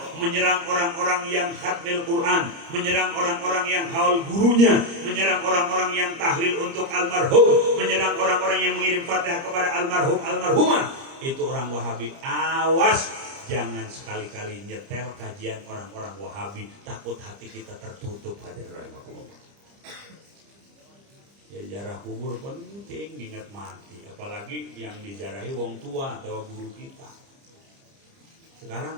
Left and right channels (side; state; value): left; late; 30 ms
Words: menyerang orang-orang yang khatmil Quran, menyerang orang-orang yang hawal gurunya, menyerang orang-orang yang tahlil untuk almarhum, menyerang orang-orang yang mengirim Fatihah kepada almarhum almarhumah. Itu orang Wahabi. Awas, jangan sekali-kali nyetel kajian orang-orang Wahabi, takut hati kita tertutup. Hadirin rahimakumullah. Ya, jarah kubur penting, ingat mati. Apalagi yang dijarahi wong tua atau guru kita. Sekarang